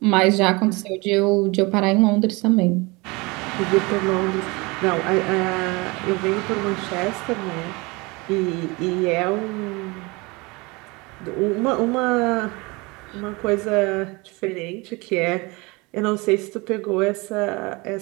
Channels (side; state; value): left; quieter; 25.6 dB